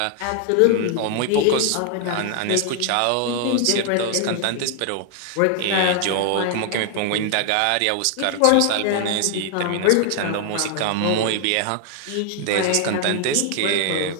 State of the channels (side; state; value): both; different; correlation 0.00